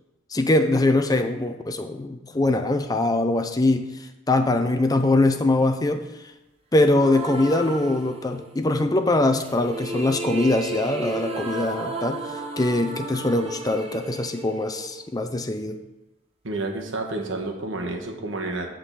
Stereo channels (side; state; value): both; normal; correlation 0.68